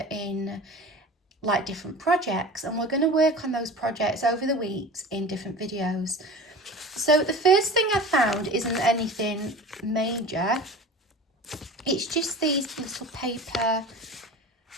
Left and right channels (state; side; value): normal; both; correlation 0.36